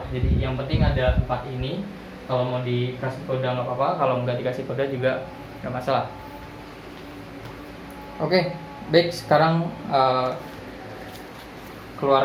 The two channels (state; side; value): identical; both; correlation 1.00